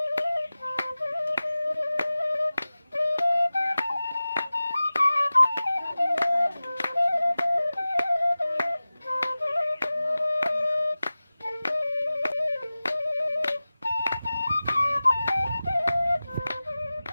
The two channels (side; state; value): both; inverted; correlation -0.97